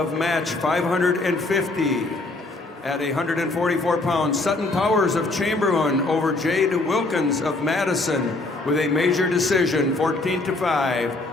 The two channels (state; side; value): quieter; right; 3.1 dB